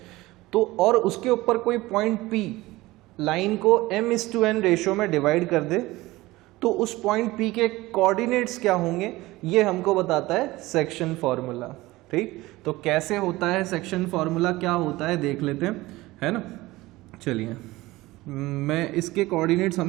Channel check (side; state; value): left; quieter; 19.2 dB